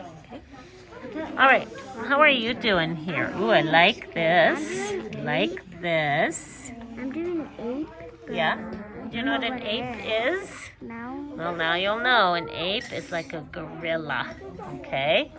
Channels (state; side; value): identical; both; correlation 1.00